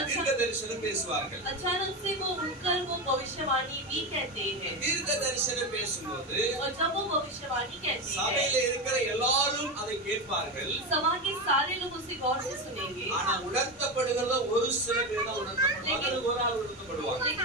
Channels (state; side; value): normal; both; correlation 0.17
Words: தீர்க்க தரிசனம் பேசுவார்கள் अचानक से वो उठकर वो भविष्यवाणी भी कहते हैं தீர்க்க தரிசனம் பேசும்போது और जब वो भविष्यवाणी कहते சபையில हैं இருக்கிற எல்லாரும் அதை கேட்பார்கள் सभा के सारे लोग उसे गौर से सुनेंगे ஆனா உணர்த்தப்படுகிறத ஒரு சில பேர் தான் உணர்த்தப்படுவாங்க அல்லது ஒரு ஆள் உணர்த்தப்படுவாங்க